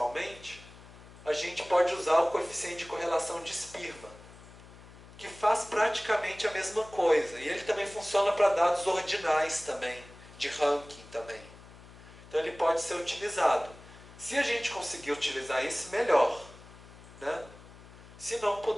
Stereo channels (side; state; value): left; noise; hum, 20 dB below the sound